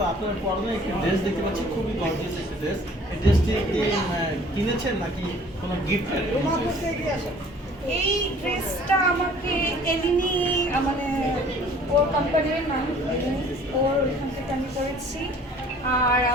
আপনার পরনে একটি ড্রেস দেখতে পাচ্ছি, খুবই গর্জিয়াস একটি ড্রেস। এই ড্রেসটি কিনেছেন নাকি কোনো গিফট? এই ড্রেসটা আমাকে এলিনি মানে ওর কোম্পানির নাম ওর এখান থেকে আমি করেছি। আর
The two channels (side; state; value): both; normal; correlation 0.52